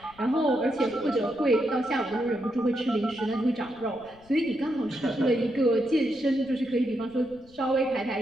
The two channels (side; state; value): left; noise; rumble, 26 dB below the sound